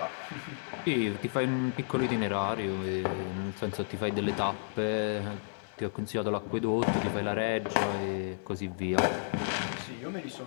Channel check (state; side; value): silent; right; digital silence